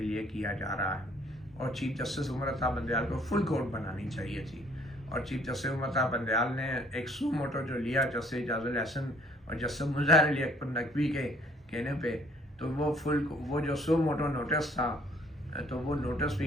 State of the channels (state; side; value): normal; both; correlation 0.60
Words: لیے کیا جا رہا ہے، اور چیف جسٹس عمر عطا بندیال کو فل کورٹ بنانی چاہیے تھی۔ اور چیف جسٹس عمر عطا بندیال نے ایک سو موٹو جو لیا جسٹس اعجاز الحسن اور جسٹس مظاہر علی اکبر نقوی کے کہنے پہ، تو وہ جو سو موٹو نوٹس تھا تو وہ نوٹس